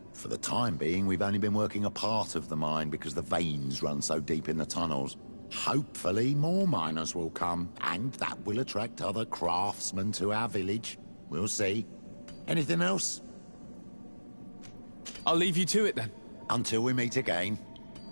For the time being, we've only been working a part of the mine because the veins run so deep in the tunnels. Hopefully more miners will come, and that will attract other craftsmen to our village. We'll see. Anything else? I'll leave you to it then. Until we meet again.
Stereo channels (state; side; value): inverted; both; correlation -1.00